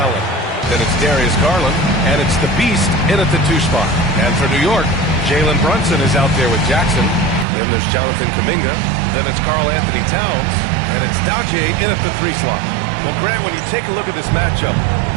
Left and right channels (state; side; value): drops out; left; at 7.5 s